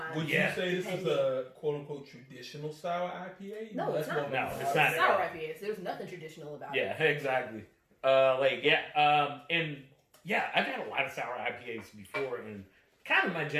Would Yeah. you say this is a quote unquote traditional sour IPA? No, it's not. No, it's It's not. sour IPAs. There's nothing traditional about it. Yeah, exactly. And yeah, I've had a lot of sour IPAs before, and kind of my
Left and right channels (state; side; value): identical; both; correlation 1.00